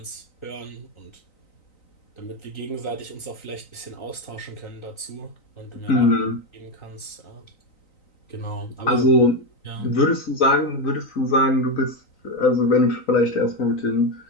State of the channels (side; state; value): right; late; 3.9 ms